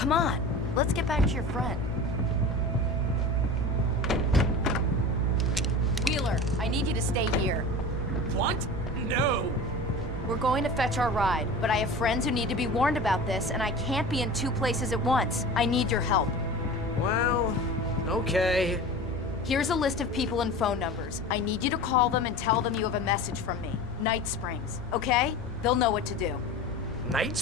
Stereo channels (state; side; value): normal; both; correlation 0.34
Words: on, let's get back to your friend. Wheeler, I need you to stay here. What? No. We're going to fetch our ride, but I have friends who need to be warned about this, and I can't be in 2 places at once. I need your help. Well, okay. Here's a list of people and phone numbers. I need you to call them and tell them you have a message from me. Night Springs, okay? They'll know what to do. Night